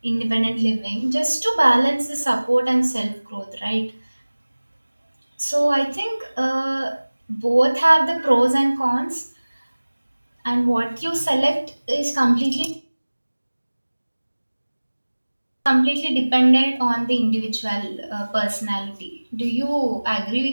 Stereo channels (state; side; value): inverted; both; correlation -1.00